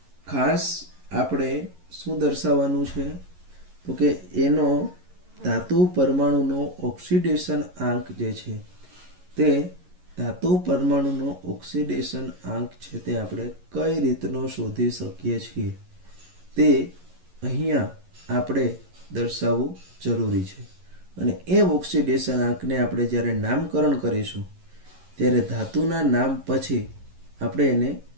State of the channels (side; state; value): left; late; 11 ms